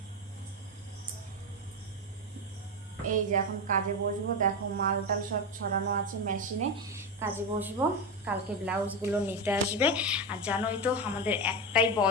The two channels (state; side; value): normal; both; correlation 0.15